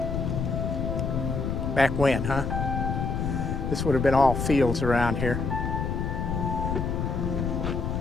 back when, huh? This would have been all fields around here.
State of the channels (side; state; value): left; noise; rumble, 1 dB below the sound